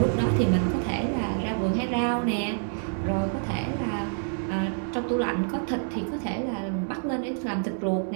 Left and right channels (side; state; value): left; silent; digital silence